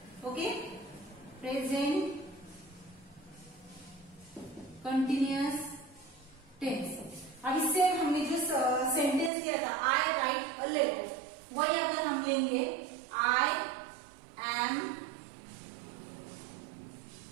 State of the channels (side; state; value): left; drops out; at 9.3 s